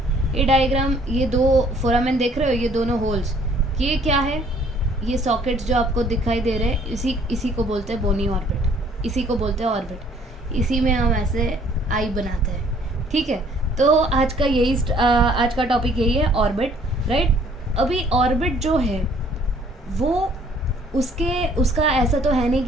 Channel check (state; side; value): normal; both; correlation 0.59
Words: ये डायग्राम, ये दो फोरामेन देख रहे हो, ये दोनों होल्स, ये क्या है? ये सॉकेट्स जो आपको दिखाई दे रहे हैं, इसी को बोलते हैं बोनी ऑर्बिट. इसी को बोलते हैं ऑर्बिट. इसी में हम ऐसे आई बनाते हैं. ठीक है, तो आज का टॉपिक यही है, ऑर्बिट. राइट. अभी ऑर्बिट जो है वो उसका ऐसा तो है नहीं